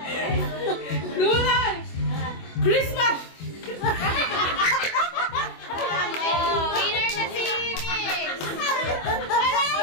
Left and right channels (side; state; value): right; late; 24 ms